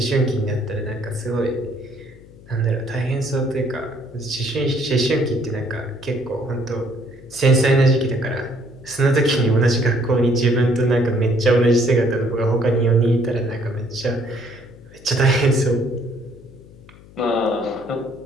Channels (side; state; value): left; noise; hum, 22 dB below the sound